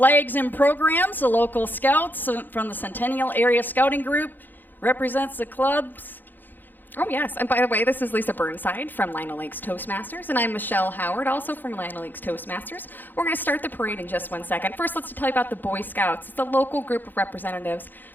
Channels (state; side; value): late; right; 0.089 ms